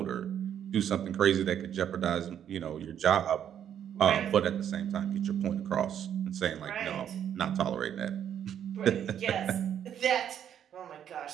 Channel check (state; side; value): quieter; left; 9.4 dB